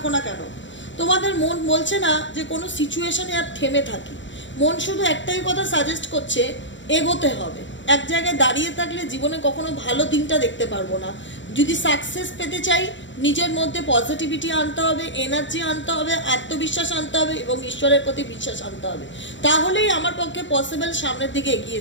না কেন, তোমাদের মন বলছে না যে কোনো সিচুয়েশনে আর থেমে থাকি। মন শুধু একটাই কথা সাজেস্ট করছে, এগোতে হবে। এক জায়গায় দাঁড়িয়ে থাকলে জীবনে কখনো ভালো দিনটা দেখতে পারবো না। যদি সাকসেস পেতে চাই, নিজের মধ্যে পজিটিভিটি আনতে হবে, এনার্জি আনতে হবে, আত্মবিশ্বাস আনতে হবে এবং ঈশ্বরের প্রতি বিশ্বাস আনতে হবে। তাহলেই আমার পক্ষে পসিবল সামনের দিকে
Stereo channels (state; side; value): late; right; 0.54 ms